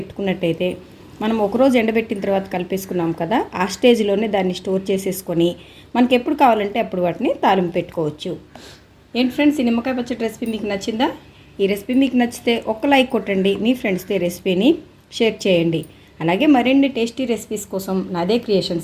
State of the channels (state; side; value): identical; both; correlation 1.00